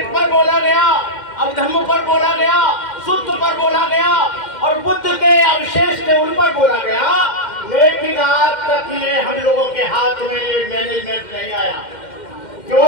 पर बोला गया, अभिधम्म पर बोला गया, सुत्त पर बोला गया और बुद्ध के अवशेष थे उन पर बोला गया। लेकिन आज तक ये हम लोगों के हाथ में ये मैनेजमेंट नहीं आया। क्यों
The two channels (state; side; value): late; right; 2.1 ms